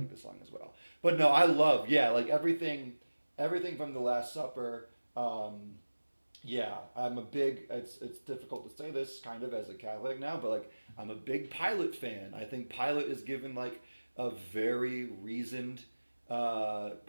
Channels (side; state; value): both; inverted; correlation -1.00